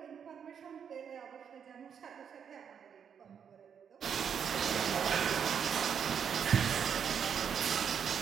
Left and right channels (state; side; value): quieter; left; 7.6 dB